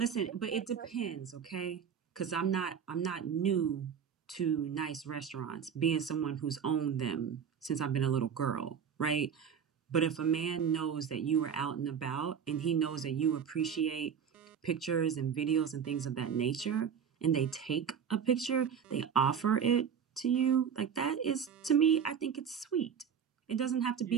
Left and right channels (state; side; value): quieter; left; 7.5 dB